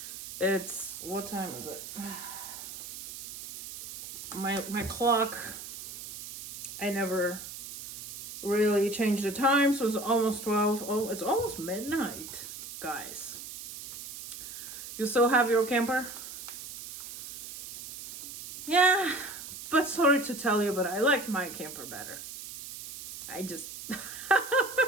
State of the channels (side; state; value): right; noise; hiss, 11 dB below the sound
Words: what time is it? My clock, I never really changed the time, so it's almost 12. Oh, it's almost midnight, guys. You still have your camper? Yeah, but sorry to tell you, but I like my camper better. It